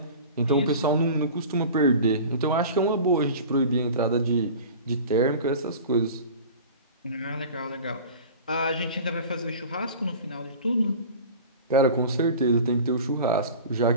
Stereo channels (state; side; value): inverted; both; correlation -0.38